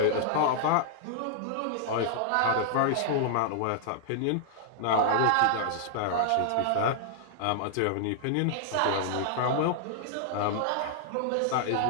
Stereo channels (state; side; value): different; both; correlation -0.01